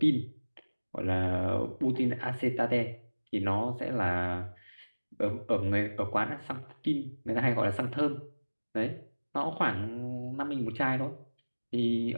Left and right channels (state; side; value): inverted; both; correlation -1.00